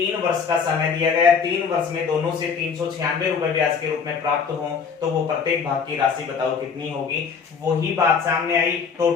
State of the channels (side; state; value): right; quieter; 6.0 dB